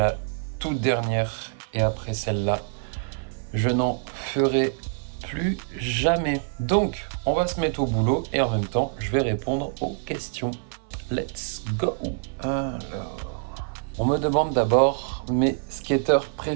toute dernière et après celle-là, je n'en ferai plus jamais. Donc, on va se mettre au boulot et en même temps, je vais répondre aux questions. Let's go. Alors, on me demande d'abord mes skateurs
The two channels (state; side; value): silent; left; 59 dB below the other